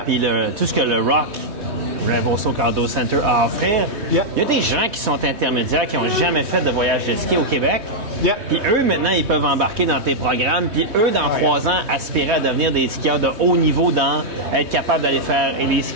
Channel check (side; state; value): left; late; 3.2 ms